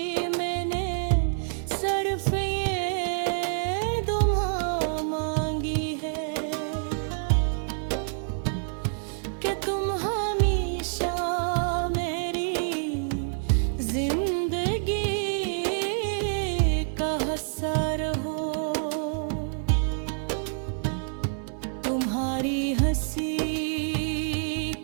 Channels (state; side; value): silent; left; digital silence